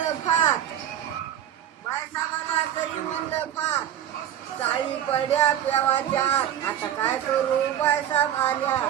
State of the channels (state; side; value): quieter; left; 10.7 dB